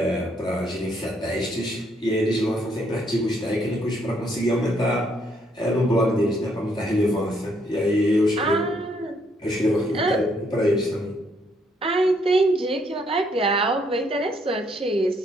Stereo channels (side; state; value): both; normal; correlation 0.71